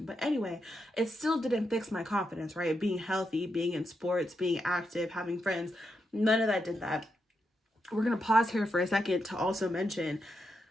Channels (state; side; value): normal; both; correlation 0.84